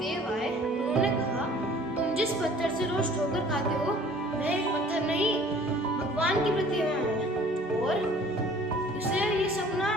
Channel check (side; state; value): both; normal; correlation 0.51